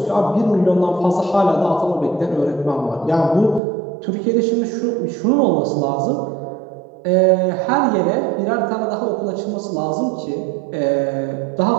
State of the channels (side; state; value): left; drops out; at 3.6 s